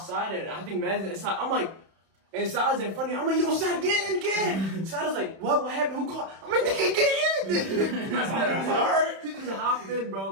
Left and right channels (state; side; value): late; left; 31 ms